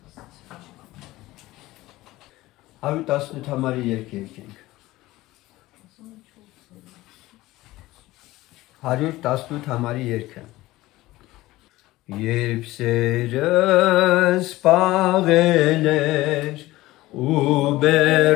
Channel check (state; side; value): quieter; right; 17.9 dB